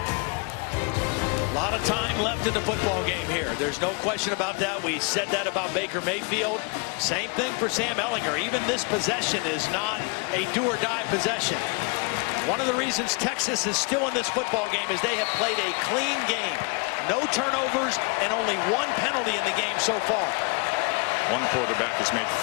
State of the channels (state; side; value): quieter; right; 33.6 dB